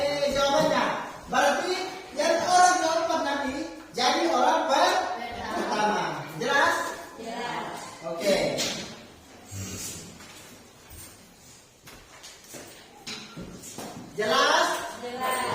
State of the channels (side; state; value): both; identical; correlation 1.00